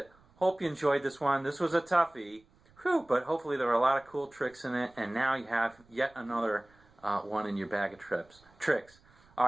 Hope you enjoyed this one. This was a toughie, but hopefully there were a lot of cool tricks in it, and now you have yet another one in your bag of tricks. All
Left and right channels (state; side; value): noise; right; rumble, 30 dB below the sound